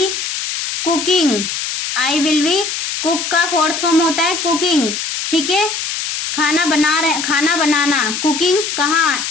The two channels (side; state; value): left; noise; hiss, 4 dB below the sound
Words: cooking, I will be, cook का फोर्थ फॉर्म होता है कुकिंग। ठीक है, खाना बनाना, कुकिंग कहाँ?